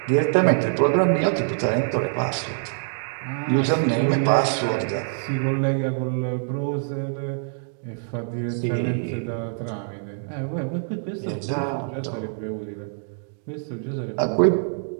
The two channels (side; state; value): left; silent; digital silence